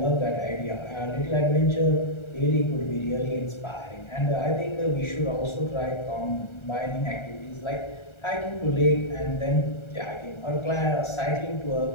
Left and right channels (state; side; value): late; right; 1.3 ms